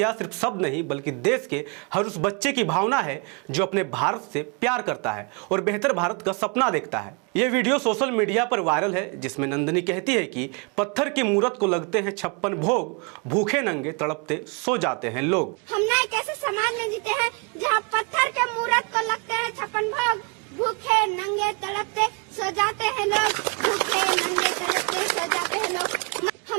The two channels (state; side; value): quieter; left; 32.8 dB